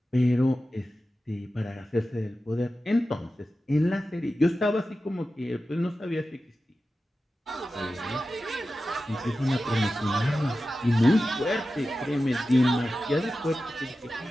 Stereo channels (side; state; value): both; normal; correlation 0.93